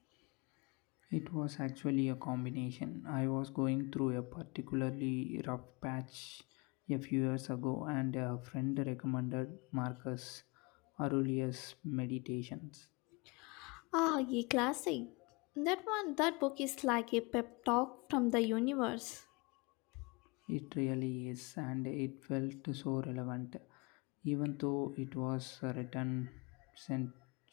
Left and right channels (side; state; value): right; quieter; 28.3 dB